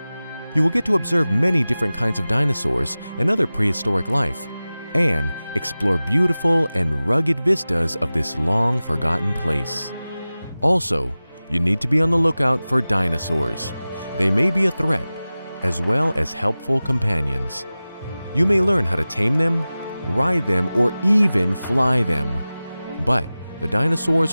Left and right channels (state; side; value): inverted; both; correlation -0.97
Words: You will get to observe many different kinds of dinosaurs and other prehistoric life, and explore beautiful and rugged vistas of this long-forgotten place. Also, you need to be on the lookout for dinosaurs. They may be a threat, as well as helpful companions. You may learn how to tame them, ride them, or even fly them. But the